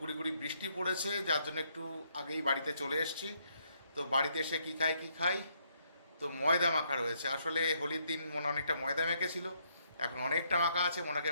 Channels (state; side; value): inverted; both; correlation -0.73